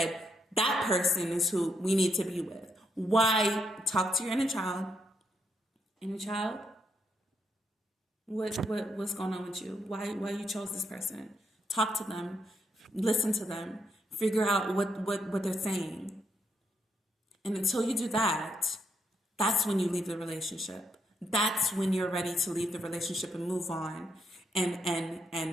that person is who we need to be with. Why? Talk to your inner child. Inner child? What's going on with you? Why you chose this person? Talk to them. Listen to them. Figure out what they're saying. And until you do that, that's when you leave the relationship. That's when you're ready to leave the relationship and move on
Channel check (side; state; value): both; normal; correlation 0.78